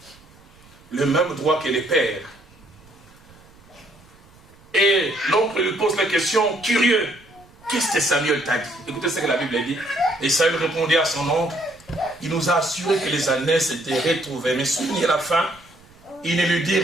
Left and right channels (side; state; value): right; noise; rumble, 27 dB below the sound